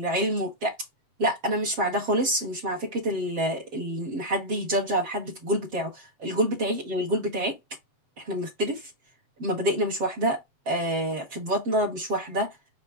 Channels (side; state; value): left; late; 7.5 ms